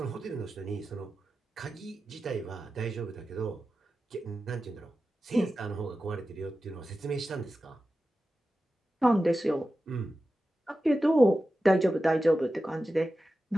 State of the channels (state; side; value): normal; both; correlation 0.93